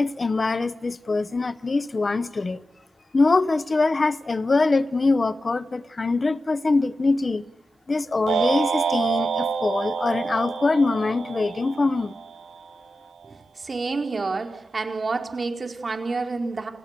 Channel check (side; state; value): both; normal; correlation 0.92